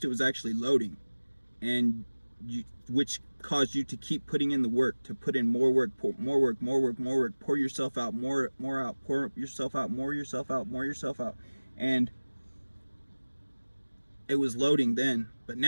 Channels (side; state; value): both; inverted; correlation -1.00